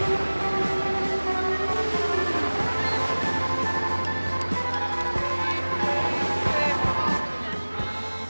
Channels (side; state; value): both; inverted; correlation -1.00